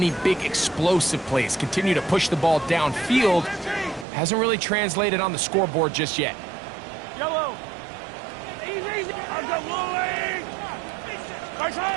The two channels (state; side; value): drops out; left; at 4.0 s